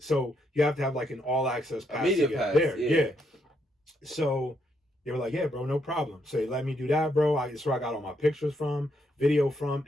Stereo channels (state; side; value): normal; both; correlation 0.77